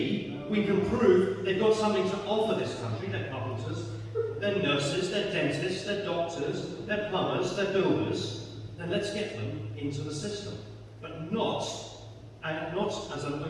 we can prove they've got something to offer this country, they're carpenters, they're nurses, they're dentists, they're doctors, they're plumbers, they're builders, then let's get them into the system. But not as an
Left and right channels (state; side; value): identical; both; correlation 1.00